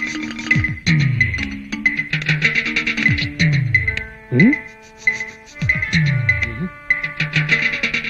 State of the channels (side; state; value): both; identical; correlation 1.00